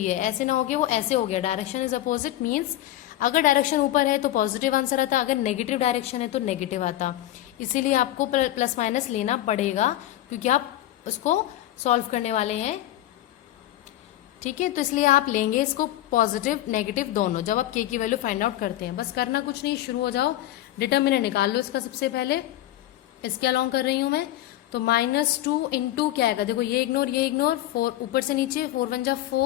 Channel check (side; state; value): right; quieter; 14.3 dB